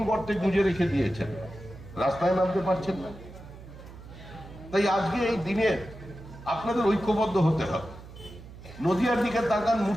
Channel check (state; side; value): noise; right; hum, 16 dB below the sound